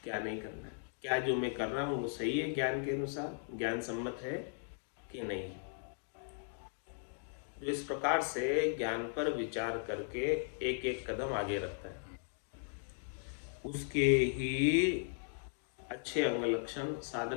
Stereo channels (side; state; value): right; silent; digital silence